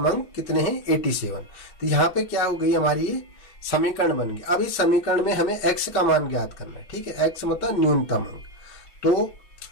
अंक कितने हैं, 87। तो यहाँ पे क्या हो गई, हमारी ये समीकरण बन गई। अब इस समीकरण में हमें x का मान ज्ञात करना है, ठीक है। x मतलब न्यूनतम अंक। तो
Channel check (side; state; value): right; late; 5.3 ms